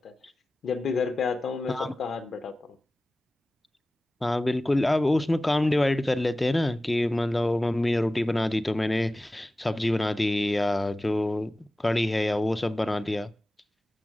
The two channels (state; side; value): normal; both; correlation 0.96